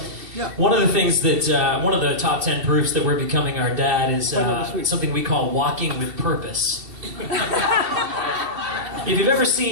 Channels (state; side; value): late; left; 2.7 ms